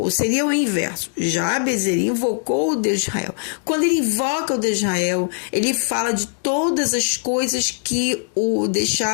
seria o inverso. Jabes, ele invocou o Deus de Israel. Quando ele invoca o Deus de Israel, ele fala de todas as coisas que o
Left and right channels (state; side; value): silent; right; digital silence